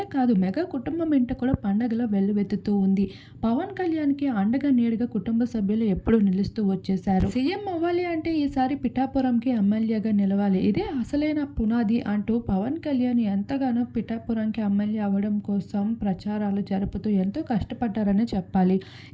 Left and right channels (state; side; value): identical; both; correlation 1.00